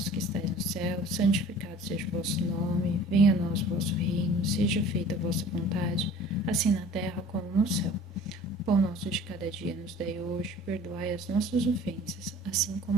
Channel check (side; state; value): both; normal; correlation 0.47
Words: que estais no céu, santificado seja o vosso nome, venha a nós o vosso reino, seja feita a vossa vontade, assim na terra como no céu. O pão nosso de cada dia nos dai hoje, perdoai as nossas ofensas, assim